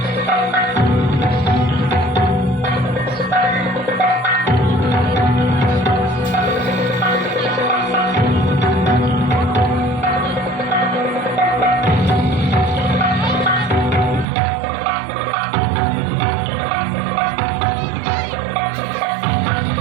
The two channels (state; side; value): drops out; left; at 14.2 s